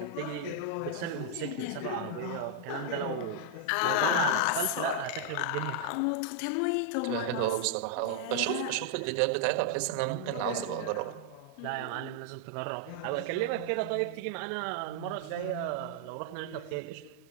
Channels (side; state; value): both; different; correlation -0.01